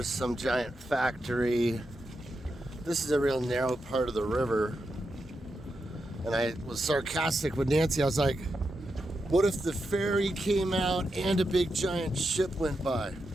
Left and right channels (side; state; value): both; normal; correlation 0.86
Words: some giant factory. This is a real narrow part of the river. And I was sarcastic with Nancy. I was like, what if the ferry came out and a big giant ship went by?